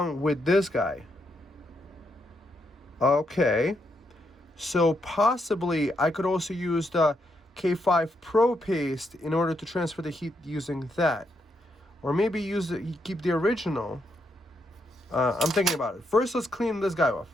with this guy. Okay. So possibly I could also use the K5 Pro paste in order to transfer the heat using that, or maybe keep the original. I'm thinking about it. First, let's clean this guy off.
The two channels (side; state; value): both; normal; correlation 0.79